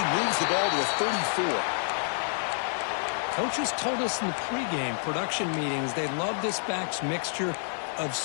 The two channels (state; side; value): silent; right; 59 dB below the other